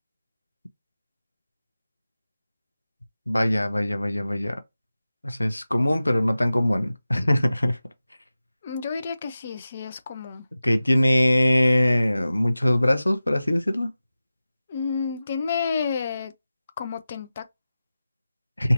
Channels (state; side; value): inverted; both; correlation -0.95